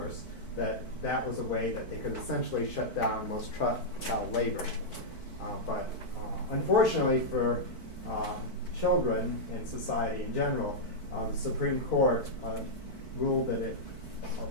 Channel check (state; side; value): late; right; 4.5 ms